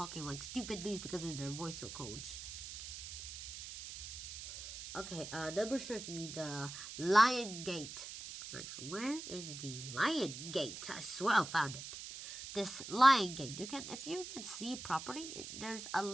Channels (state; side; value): noise; right; hiss, 9 dB below the sound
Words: like stupidly? Because of their voice codes. Okay, number 30, the Lion Gate. Where is the Lion Gate? I swear I found it. This Lion Gate. If you can see properly, there's a